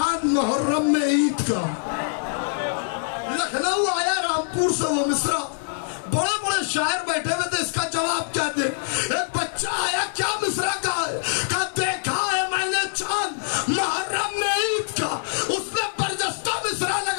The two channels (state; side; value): silent; right; digital silence